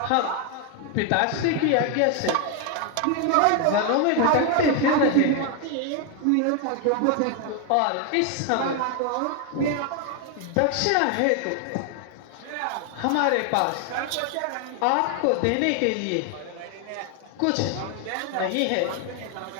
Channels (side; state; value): both; different; correlation 0.01